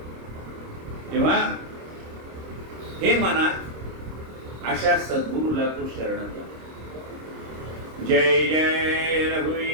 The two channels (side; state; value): left; late; 26 ms